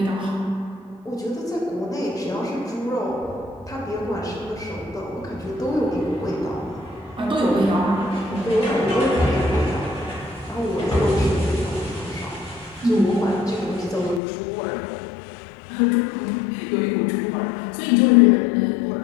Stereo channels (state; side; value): drops out; right; at 14.2 s